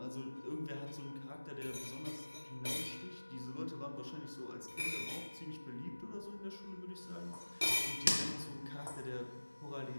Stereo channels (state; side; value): inverted; both; correlation -1.00